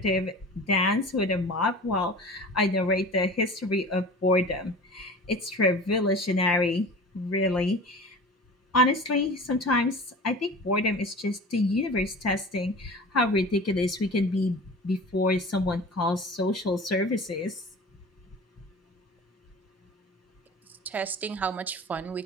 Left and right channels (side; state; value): both; normal; correlation 0.37